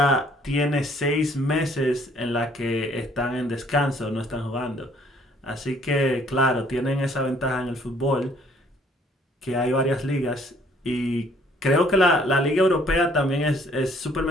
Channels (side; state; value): both; normal; correlation 0.61